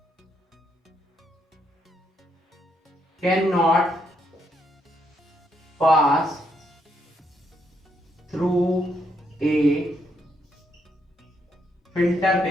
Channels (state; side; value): normal; both; correlation 0.76